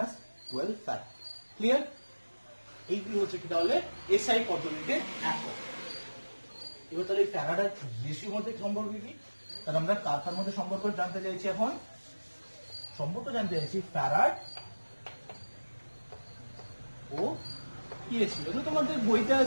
farad. Clear? এইগুলো হচ্ছে কি তাহলে এসআই পদ্ধতিতে একক। এবার তাহলে ফ্যারাড আর ইএসইউর মধ্যে সম্পর্ক কি? তাহলে আমরা কার মধ্যে সম্পর্ক জানতে চাইছি এখন? সম্পর্ক জানতে চাইছি ফ্যারাড ও ইএসইউ। এগুলো তোমাদের বইতে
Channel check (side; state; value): both; inverted; correlation -1.00